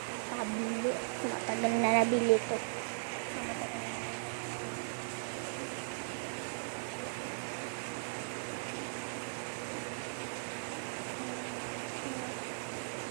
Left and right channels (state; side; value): silent; left; digital silence